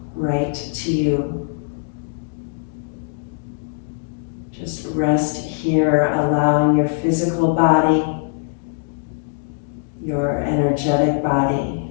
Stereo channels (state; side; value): silent; right; digital silence